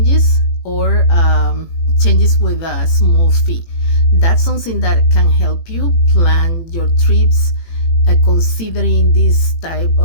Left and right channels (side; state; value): right; late; 18 ms